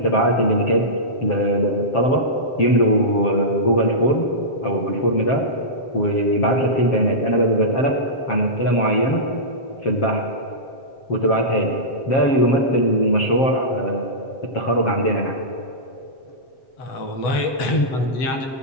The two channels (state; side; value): late; right; 7.6 ms